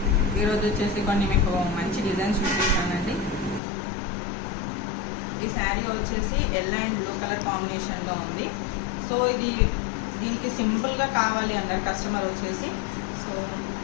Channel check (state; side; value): drops out; right; at 3.6 s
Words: ఈరోజు వచ్చేసి కొన్ని మీకు మంచి డిజైన్స్ చూపిస్తానండి. ఈ శారీ వచ్చేసి ఎల్లో అండ్ బ్లూ కలర్ కాంబినేషన్లో ఉంది. సో ఇది దీనికి సింపుల్గా కావాలి అన్నారు కస్టమర్ వచ్చేసి. సో